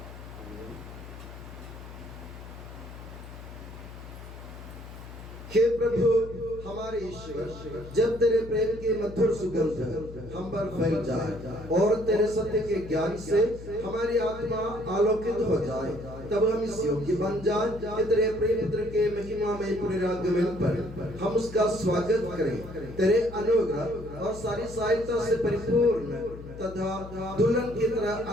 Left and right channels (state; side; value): noise; left; hum, 14 dB below the sound